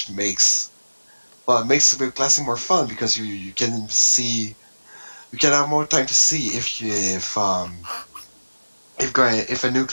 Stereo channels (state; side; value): inverted; both; correlation -1.00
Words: makes the classing more fun, because you can have more time to see if a new